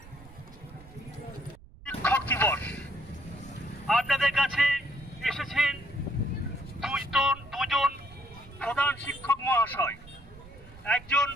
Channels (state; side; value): noise; right; rumble, 20 dB below the sound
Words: শিক্ষক দিবস, আপনাদের কাছে এসেছেন দুজন প্রধান শিক্ষক মহাশয়। একজন